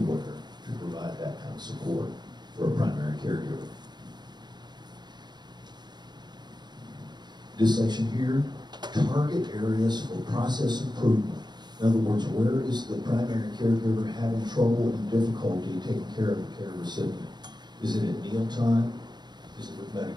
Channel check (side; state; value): left; late; 0.21 ms